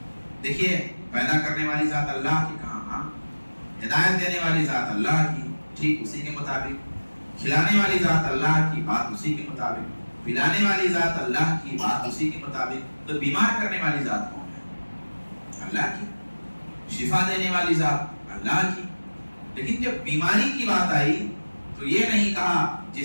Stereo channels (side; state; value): both; inverted; correlation -1.00